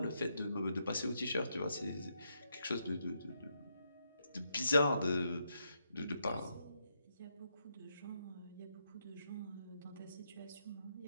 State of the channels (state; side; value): inverted; both; correlation -0.80